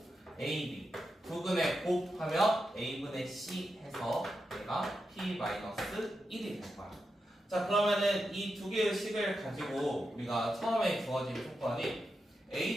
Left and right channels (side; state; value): both; normal; correlation 0.88